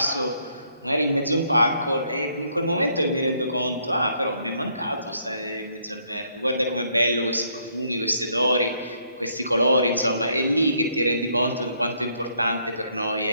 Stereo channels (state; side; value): inverted; both; correlation -0.70